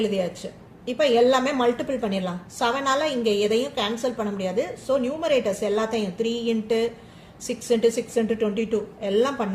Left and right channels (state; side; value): identical; both; correlation 1.00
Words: இப்போ எல்லாமே மல்டிபிள் பண்ணிடலாம். 7ஆல இங்கே எதையும் கேன்சல் பண்ண முடியாது. ஸோ நியூமரேட்டர்ஸ் எல்லாத்தையும் 3 into 6 into 6 into 22 எல்லாம்